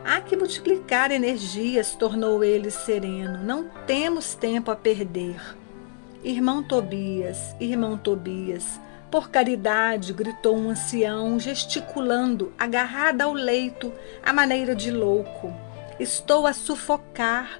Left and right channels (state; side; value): silent; right; digital silence